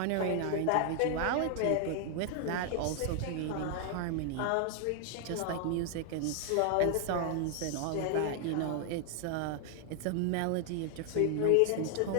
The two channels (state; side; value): different; both; correlation 0.00